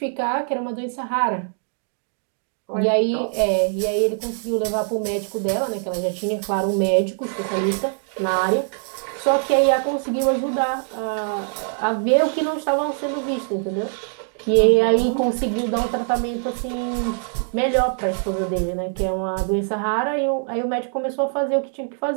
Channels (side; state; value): left; silent; 61 dB below the other